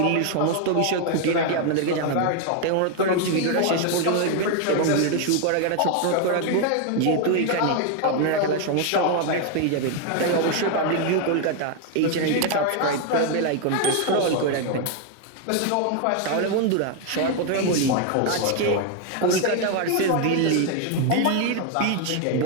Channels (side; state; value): both; different; correlation 0.01